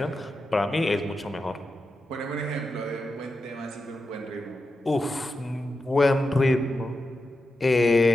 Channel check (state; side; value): normal; both; correlation 0.89